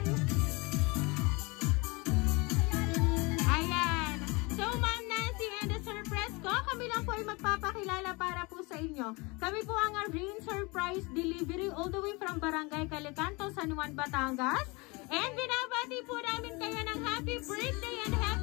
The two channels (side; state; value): right; quieter; 26.6 dB